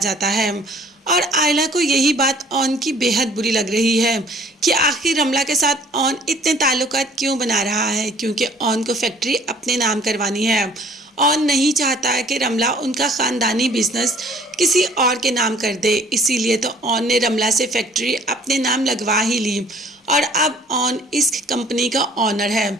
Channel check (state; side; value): normal; both; correlation 0.55